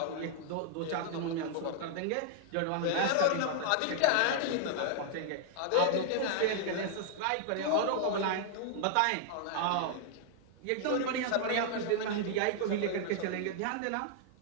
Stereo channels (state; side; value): different; both; correlation -0.01